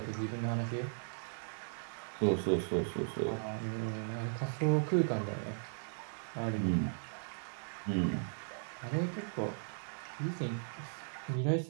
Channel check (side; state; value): left; silent; digital silence